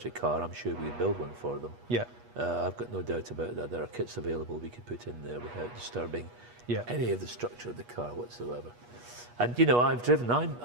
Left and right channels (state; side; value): late; left; 8.3 ms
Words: car, I'm sure we could build one for them. Yeah. I've got no doubt about that. There are kits available we could put in there without disturbing any of the structure of the car whatsoever. And you know,